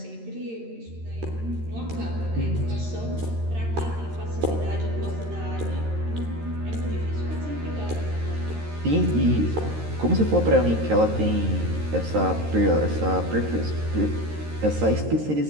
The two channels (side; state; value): left; late; 13 ms